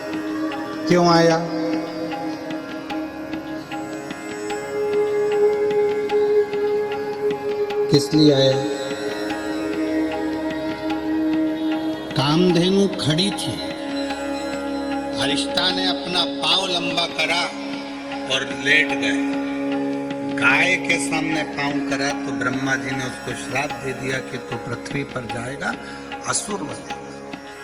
क्यों आया? किस लिए आया? कामधेनु खड़ी थी, अरिष्टा ने अपना पांव लंबा करा और लेट गए। गाय के सामने पांव करा तो ब्रह्मा जी ने उसको श्राप दे दिया कि तो पृथ्वी पर जाएगा, असुर बनेगा।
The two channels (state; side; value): identical; both; correlation 1.00